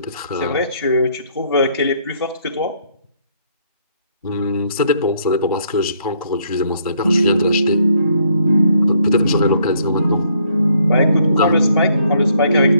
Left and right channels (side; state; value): both; inverted; correlation -0.68